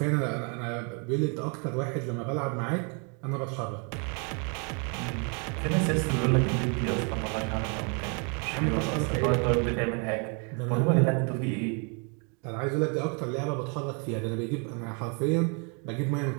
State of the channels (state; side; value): quieter; left; 36.5 dB